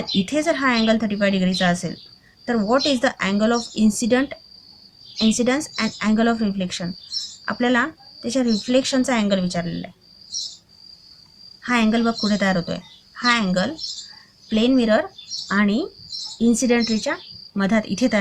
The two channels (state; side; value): identical; both; correlation 1.00